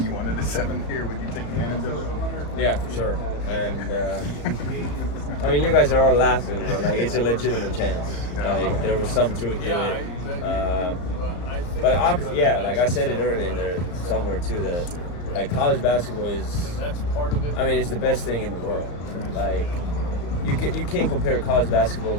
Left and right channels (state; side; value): late; right; 34 ms